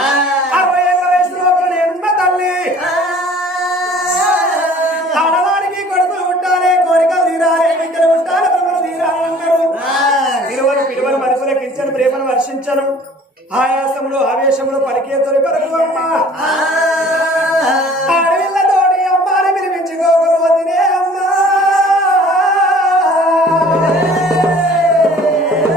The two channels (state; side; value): normal; both; correlation 0.50